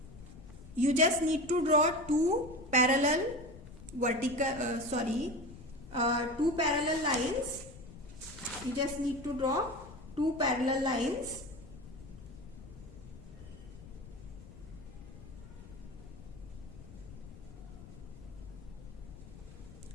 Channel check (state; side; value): noise; left; rumble, 16 dB below the sound